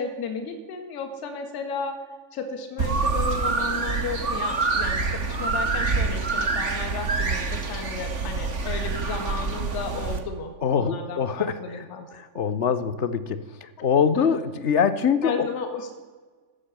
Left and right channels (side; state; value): left; late; 3.5 ms